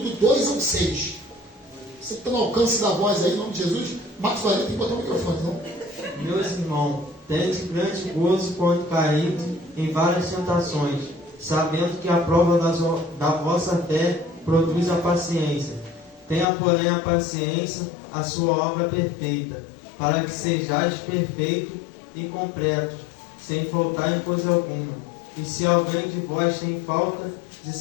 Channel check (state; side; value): drops out; right; at 16.4 s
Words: do 2 ao 6. Você que está no alcance da voz aí, em nome de Jesus, Marcos Valério tem que botar o microfone, não? Meus irmãos, tende grande gozo quando caídos em várias tentações, sabendo que a prova da vossa fé produz a paciência. Tenha, porém, a paciência a sua obra perfeita, para que sejais perfeitos e completos, sem faltar em coisa alguma. E se alguém de vós tem falta de